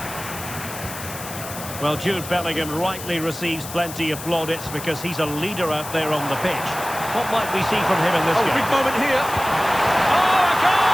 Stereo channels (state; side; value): noise; left; hiss, 11 dB below the sound